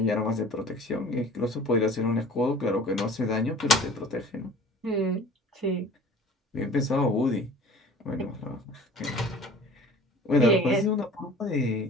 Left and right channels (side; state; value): both; normal; correlation 0.45